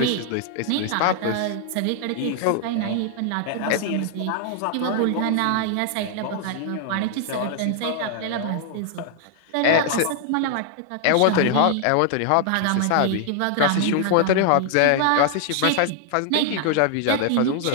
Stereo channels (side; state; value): both; different; correlation 0.00